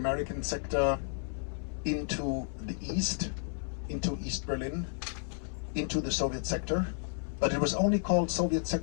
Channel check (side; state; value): right; silent; 56 dB below the other